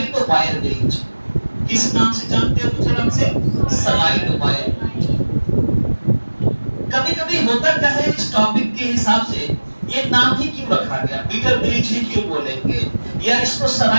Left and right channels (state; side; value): inverted; both; correlation -1.00